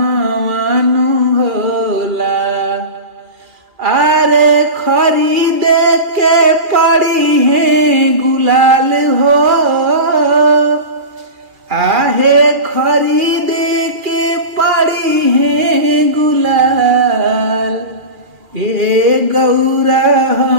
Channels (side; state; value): left; late; 2.4 ms